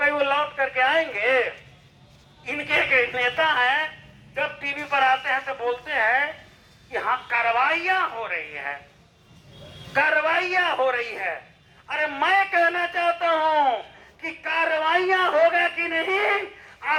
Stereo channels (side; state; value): both; identical; correlation 1.00